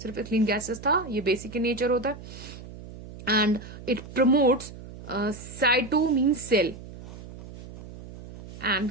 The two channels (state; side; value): noise; right; hum, 15 dB below the sound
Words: ethylene gases था, ये basic in nature होता है. And it promotes, cyto means cell and